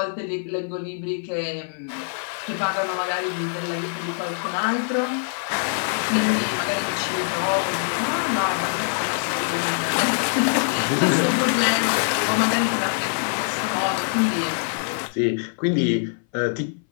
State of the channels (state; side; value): silent; right; 59 dB below the other